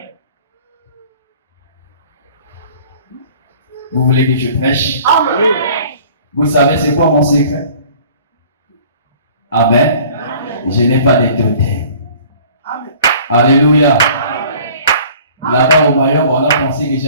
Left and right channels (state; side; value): inverted; both; correlation -0.50